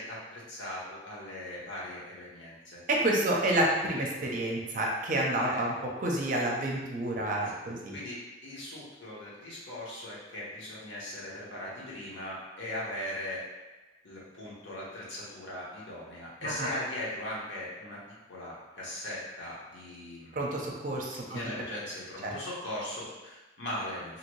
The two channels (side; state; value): both; normal; correlation 0.18